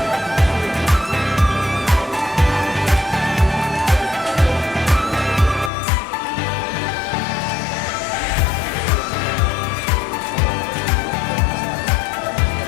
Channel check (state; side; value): drops out; right; at 5.7 s